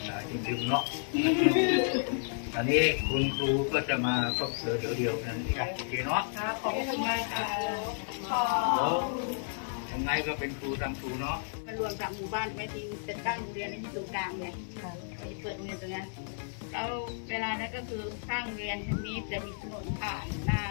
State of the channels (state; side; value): silent; right; digital silence